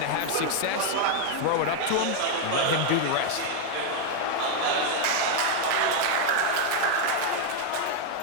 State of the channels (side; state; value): both; different; correlation 0.01